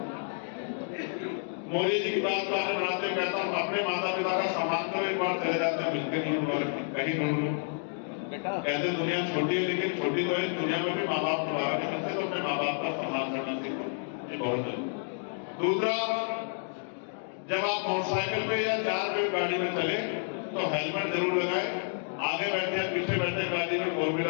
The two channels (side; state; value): right; silent; 58 dB below the other